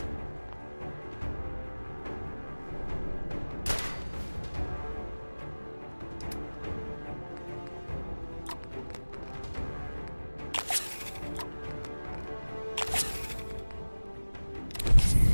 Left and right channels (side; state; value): both; inverted; correlation -1.00